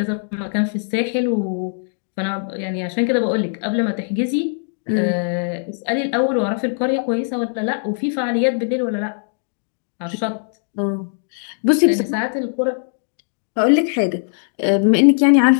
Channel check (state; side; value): silent; right; digital silence